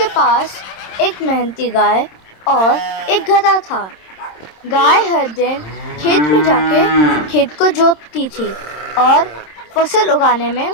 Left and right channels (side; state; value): right; late; 26 ms